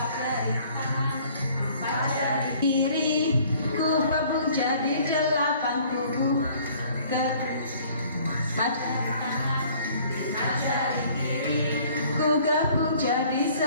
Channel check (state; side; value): inverted; both; correlation -0.56